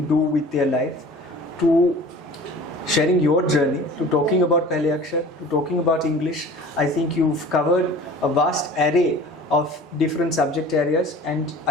do with their life, to sharing your journey, to talking about Pehlay Akshar, to talking about English. I think you've covered a vast array of different subject areas, and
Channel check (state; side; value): normal; both; correlation 0.43